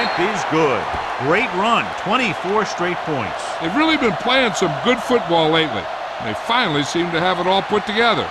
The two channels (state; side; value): identical; both; correlation 1.00